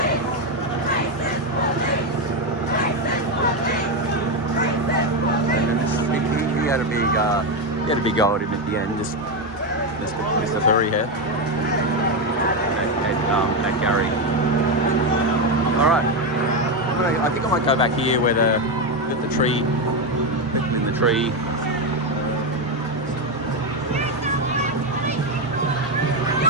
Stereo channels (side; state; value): both; normal; correlation 0.09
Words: He had a big go at him at the end. Just Mr. Surry here at Gary. All right, I think I might go back here where the tree, in the tree.